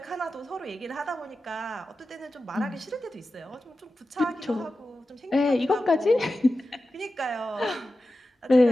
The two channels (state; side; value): normal; both; correlation 0.93